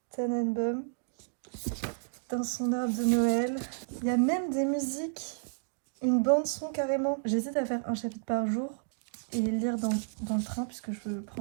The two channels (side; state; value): left; silent; digital silence